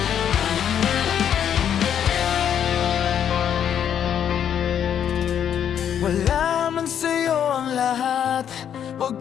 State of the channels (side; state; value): right; quieter; 9.1 dB